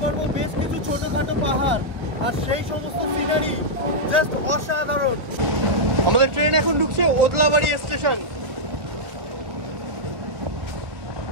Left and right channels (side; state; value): left; late; 1.4 ms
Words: পারবো বেশ কিছু ছোটখাটো পাহাড় আর সেই সমস্ত সিনারি জাস্ট অসাধারণ। আমাদের ট্রেন এখন ঢুকছে ওদলাবাড়ি স্টেশন।